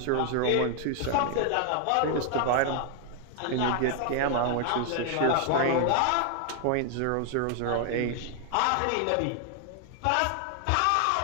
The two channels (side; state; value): both; different; correlation 0.00